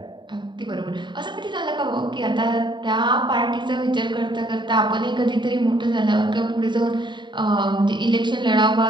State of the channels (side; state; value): left; late; 0.22 ms